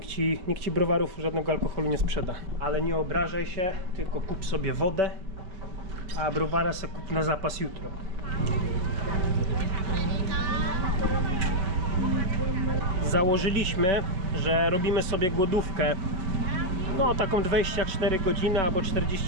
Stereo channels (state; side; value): late; left; 5.3 ms